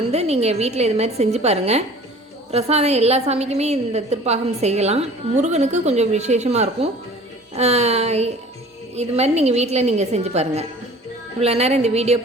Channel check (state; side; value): normal; both; correlation 0.46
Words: நீங்கள் வீட்டில் இது மாதிரி செஞ்சு பாருங்கள். பிரசாதம் எல்லா சாமிக்குமே இந்த திருப்பாகம் செய்யலாம். முருகனுக்கு கொஞ்சம் விசேஷமாக இருக்கும். இது மாதிரி நீங்கள் வீட்டில் நீங்கள் செஞ்சு பாருங்கள். இவ்வளோ நேரம் இந்த வீடியோ